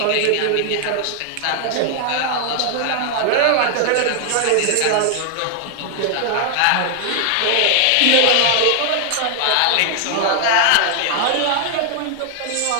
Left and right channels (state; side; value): different; both; correlation 0.00